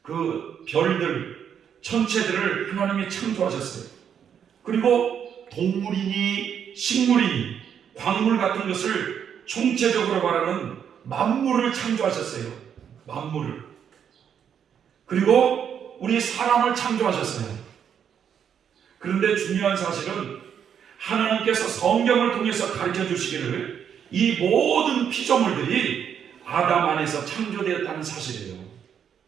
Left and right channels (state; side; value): quieter; left; 8.2 dB